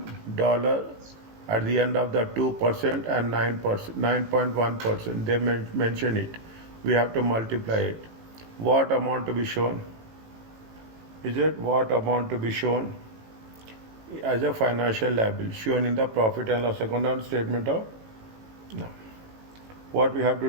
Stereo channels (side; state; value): left; late; 18 ms